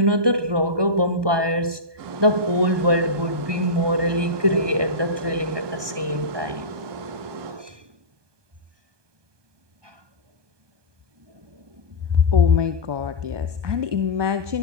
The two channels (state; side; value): late; left; 1.2 ms